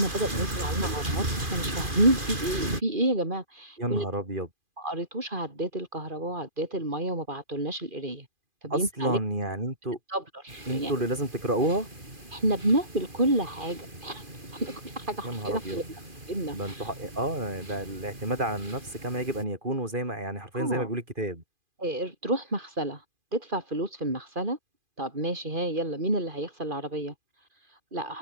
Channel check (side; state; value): left; late; 2.4 ms